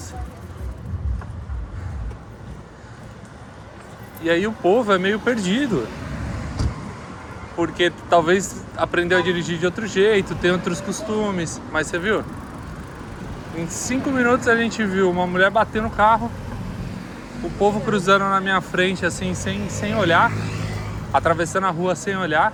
E aí o povo é meio perdido. Porque talvez aprendeu a dirigir de outro jeito, tem outros costumes. Mas você viu? Em 5 minutos a gente viu uma mulher bater no carro, o povo cruzando na minha frente assim, sem olhar, atravessando a rua sem olhar.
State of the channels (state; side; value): identical; both; correlation 1.00